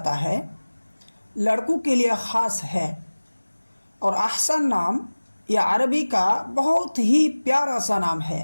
है, लड़कों के लिए ख़ास है। और अहसन नाम यह अरबी का बहुत ही प्यारा सा नाम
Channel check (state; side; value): inverted; both; correlation -1.00